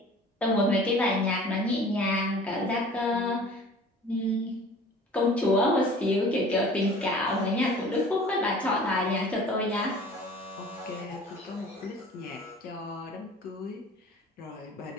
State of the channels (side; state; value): both; normal; correlation 0.46